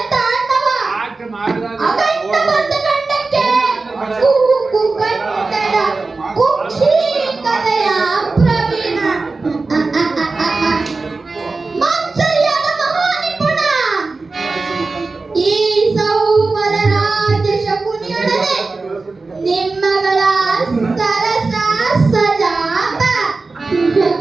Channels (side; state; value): left; quieter; 3.8 dB